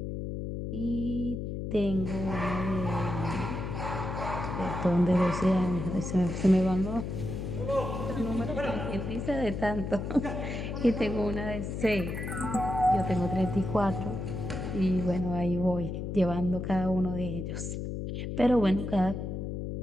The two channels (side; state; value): left; noise; hum, 4 dB below the sound